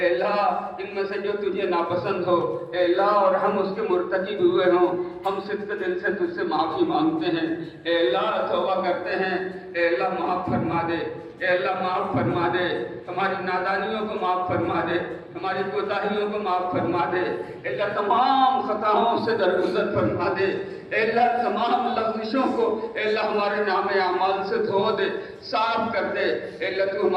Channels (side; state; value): both; identical; correlation 1.00